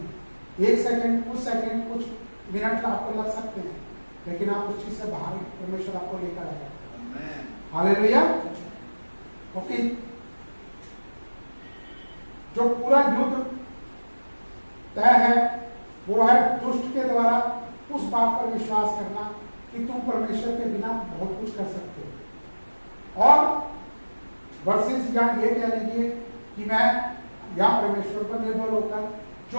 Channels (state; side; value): inverted; both; correlation -1.00